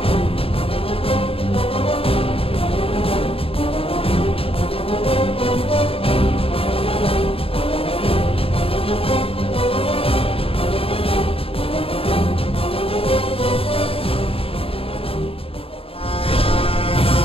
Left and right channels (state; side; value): late; right; 0.27 ms